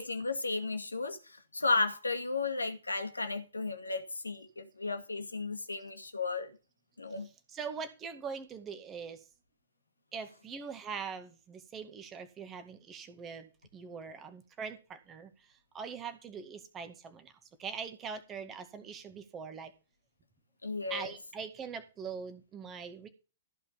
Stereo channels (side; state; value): both; inverted; correlation -0.55